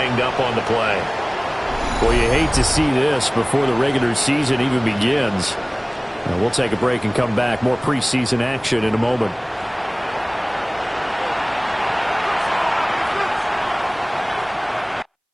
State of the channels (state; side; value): identical; both; correlation 1.00